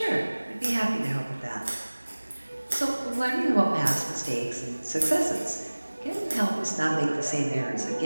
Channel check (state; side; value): inverted; both; correlation -1.00